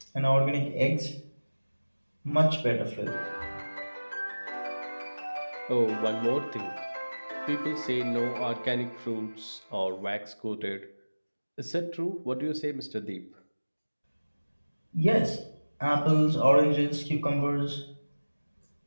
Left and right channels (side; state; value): both; inverted; correlation -1.00